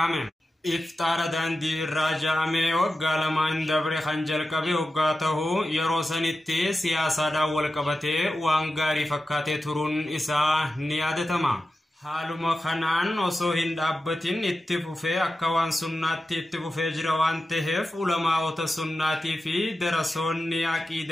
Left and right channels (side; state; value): both; normal; correlation 0.92